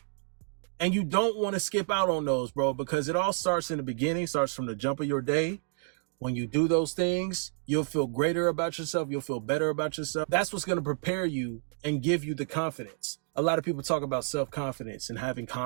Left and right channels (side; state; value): left; silent; digital silence